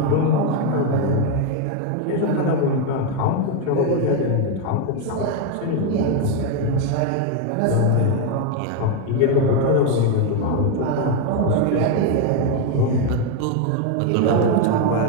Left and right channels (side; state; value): both; different; correlation 0.01